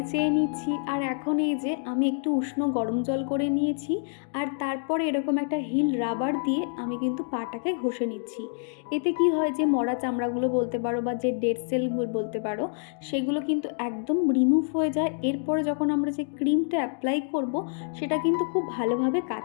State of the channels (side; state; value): right; silent; 60 dB below the other